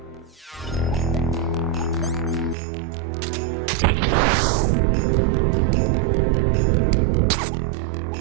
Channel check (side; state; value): left; drops out; at 2.6 s